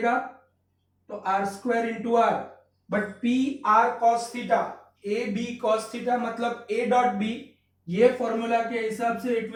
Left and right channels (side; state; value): both; identical; correlation 1.00